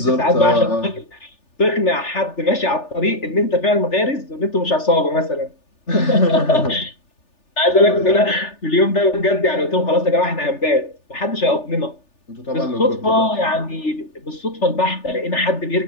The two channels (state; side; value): late; right; 3.4 ms